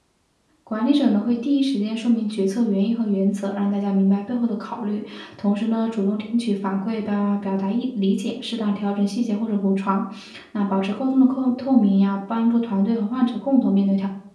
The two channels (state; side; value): identical; both; correlation 1.00